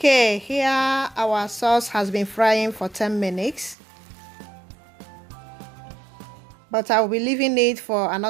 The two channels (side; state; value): left; drops out; at 3.8 s